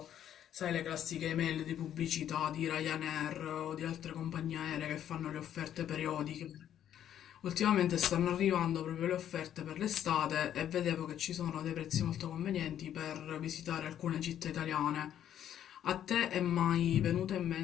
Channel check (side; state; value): right; quieter; 10.5 dB